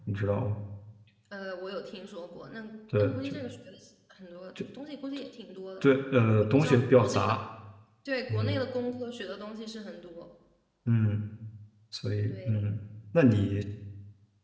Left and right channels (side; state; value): both; identical; correlation 1.00